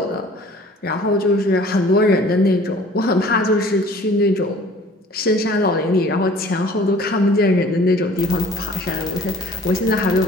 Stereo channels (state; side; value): normal; both; correlation 0.50